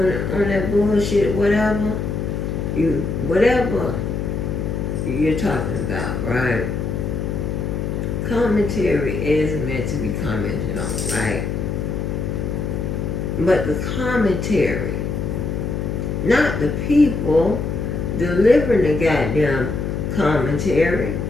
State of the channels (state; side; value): noise; left; hum, 2 dB below the sound